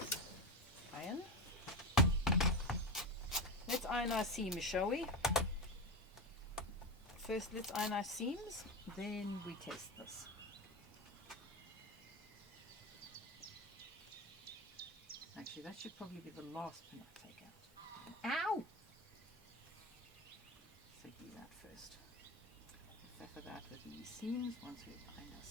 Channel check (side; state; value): both; normal; correlation 0.18